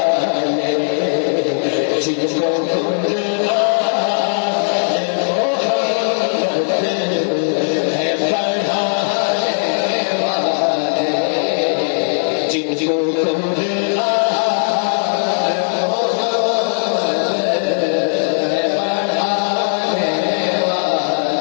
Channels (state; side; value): silent; right; 68 dB below the other